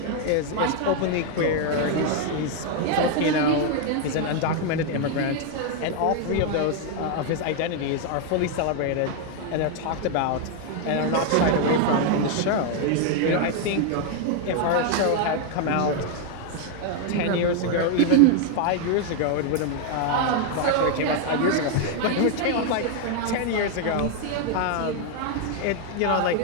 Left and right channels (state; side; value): different; both; correlation 0.00